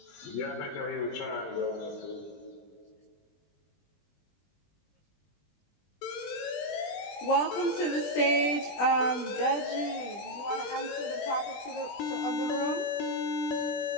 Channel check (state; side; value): late; right; 20 ms